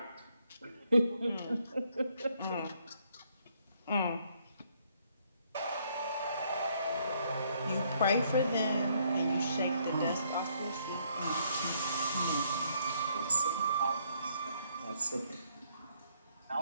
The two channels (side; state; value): both; inverted; correlation -0.69